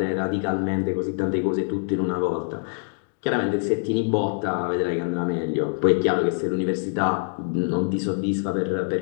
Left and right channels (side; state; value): right; silent; 55 dB below the other